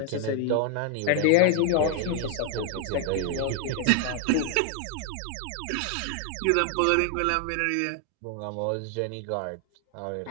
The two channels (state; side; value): different; both; correlation 0.00